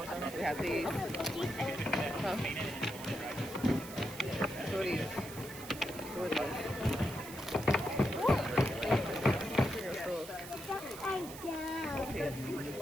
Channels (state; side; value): noise; right; hiss, 13 dB below the sound